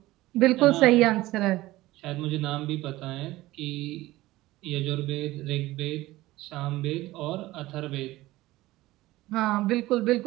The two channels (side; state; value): left; quieter; 17.8 dB